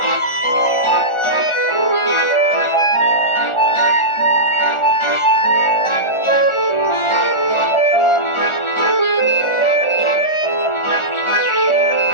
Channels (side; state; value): right; late; 1.4 ms